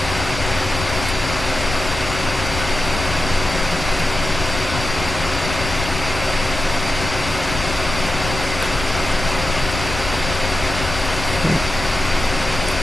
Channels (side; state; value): left; noise; rumble, 7 dB below the sound